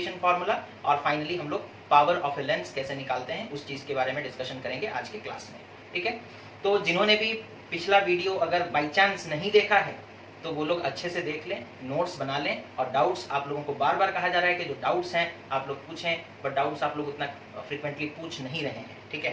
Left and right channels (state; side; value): identical; both; correlation 1.00